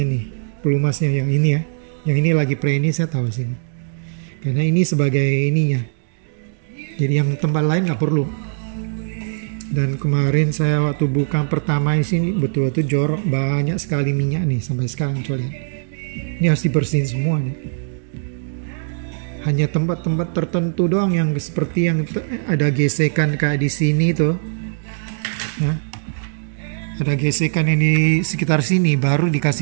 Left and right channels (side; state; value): left; silent; digital silence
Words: nih, pelumasnya yang ini ya. Yang ini lagi pre ini saya taruh sini. Karena ini sebagai ininya. Jadi yang tempat lain nggak perlu. Dan kemarin saya waktu buka pertama di sini betul-betul jorok, banyak sekali minyak nih sampai sekarang coba lihat. Ini harus dibersihin semua nih. Hanya tempat-tempat tertentu doang yang seperti yang ada gesekan kayak di sini tuh. Nah, ada gesekan ini sekitar sini baru